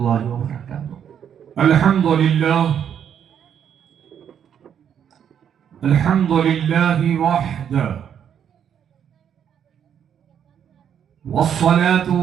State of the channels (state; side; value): quieter; left; 8.7 dB